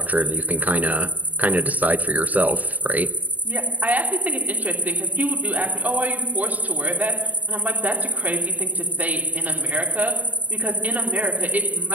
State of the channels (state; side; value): late; left; 0.077 ms